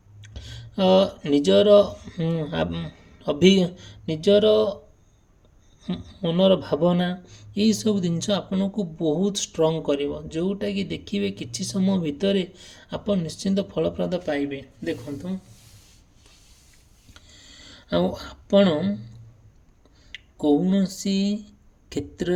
ମନର ଭାବନା, ଏଇସବୁ ଜିନିଷ ଆପଣଙ୍କୁ ବହୁତ ଷ୍ଟ୍ରଙ୍ଗ କରିବ, ଯେଉଁଟାକି ଦେଖିବେ କିଛି ସମୟ ଭିତରେ ଆପଣ ନିଶ୍ଚିନ୍ତ ଫଳପ୍ରଦ ପାଇବେ। ଦେଖନ୍ତୁ, ଆଉ ଆପଣ କୌଣସି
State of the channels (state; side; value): identical; both; correlation 1.00